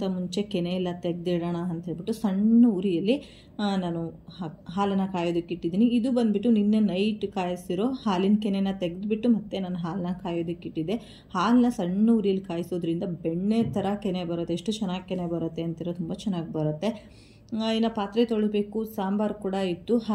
ಮುಂಚೆ ಕೆನೆ ಎಲ್ಲ ತೆಗೆದಿಡೋಣ ಅಂತ ಹೇಳ್ಬಿಟ್ಟು ಸಣ್ಣ ಉರಿಯಲ್ಲಿ ನಾನು ಹಾಲನ್ನು ಕಾಯೋದಕ್ಕೆ ಇಟ್ಟಿದ್ದೀನಿ. ಇದು ಬಂದುಬಿಟ್ಟು ನಿನ್ನೆ ನೈಟ್ ಕಾಯಿಸಿರೋ ಹಾಲಿನ ಕೆನೆನ ತೆಗೆದುಬಿಟ್ಟು ಮತ್ತೆ ನಾನು ಹಾಲನ್ನ ಕಾಯೋದಕ್ಕೆ ಇಟ್ಟಿದ್ದೆ. ಹಾಲನ್ನ ಸಣ್ಣ ಉರಿಯಲ್ಲಿ ಕಾಯಿಸೋದ್ರಿಂದ ಬೆಣ್ಣೆ ಥರ ಕೆನೆ ಬರುತ್ತೆ. ಎಷ್ಟು ಚೆನ್ನಾಗಿ ಕೆನೆ ಬರುತ್ತೆ ಅಂತಿರೋ, ತುಂಬ ಚೆನ್ನಾಗಿ ಬರುತ್ತೆ. ಇನ್ನು ಪಾತ್ರೆ ತೊಳಿಬೇಕು. ಸಾಂಬಾರು ಕೂಡ ಇತ್ತು,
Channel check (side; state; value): both; identical; correlation 1.00